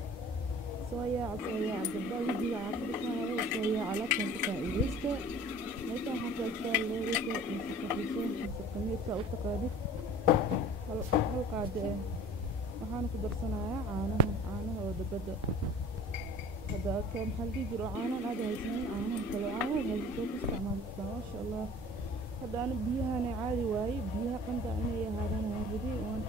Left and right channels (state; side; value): normal; both; correlation 0.46